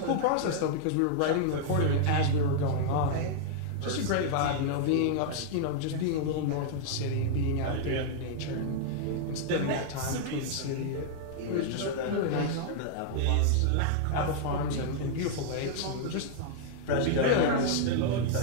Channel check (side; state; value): both; different; correlation -0.01